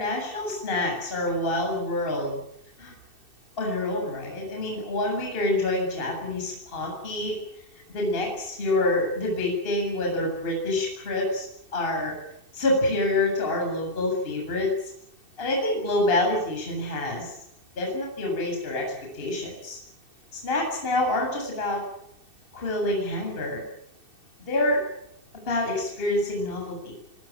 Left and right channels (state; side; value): late; right; 2.6 ms